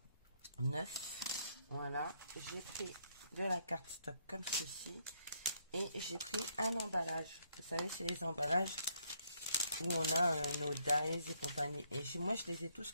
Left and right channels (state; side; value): inverted; both; correlation -0.71